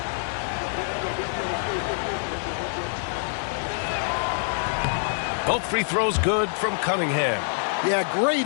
Both free throws good from Cunningham. Yeah, great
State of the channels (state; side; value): silent; right; digital silence